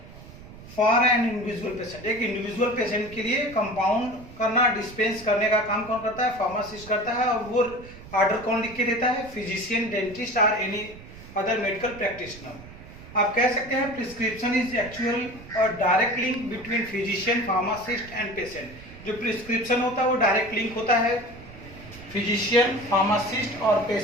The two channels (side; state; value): right; noise; rumble, 17 dB below the sound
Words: for an individual patient. एक इंडिविजुअल पेशेंट के लिए कंपाउंड करना, डिस्पेंस करने का काम कौन करता है? फार्मासिस्ट करता है। और वो ऑर्डर कौन लिख के देता है? फिजिशियन, डेंटिस्ट और एनी अदर मेडिकल प्रैक्टिशनर। आप कह सकते हैं प्रिस्क्रिप्शन इज एक्चुअल और direct link between physician, pharmacist and patient. जो प्रिस्क्रिप्शन होता है वो डायरेक्ट लिंक होता है फिजिशियन, फार्मासिस्ट और